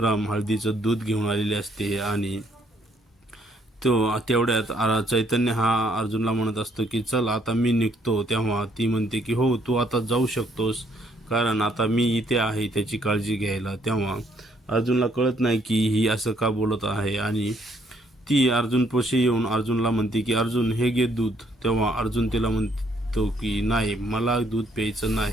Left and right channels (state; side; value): normal; both; correlation 0.68